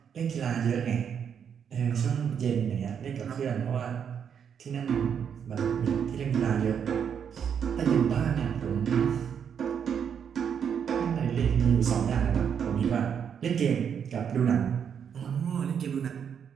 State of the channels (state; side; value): quieter; left; 7.7 dB